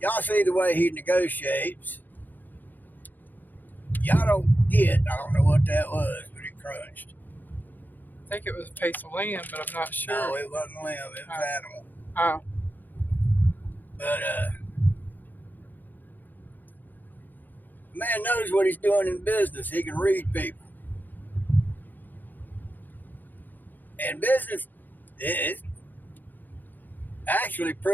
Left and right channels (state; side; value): late; right; 0.086 ms